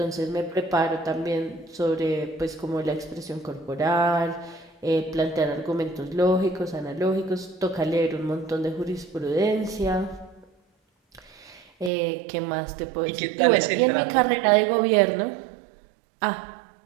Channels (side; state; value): left; drops out; at 11.9 s